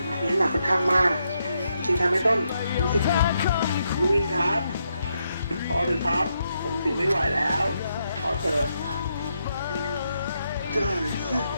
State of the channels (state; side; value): inverted; both; correlation -0.80